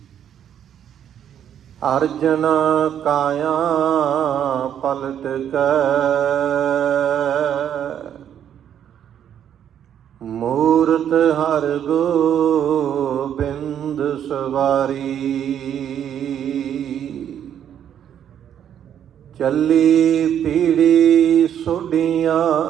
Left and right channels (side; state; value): left; quieter; 9.6 dB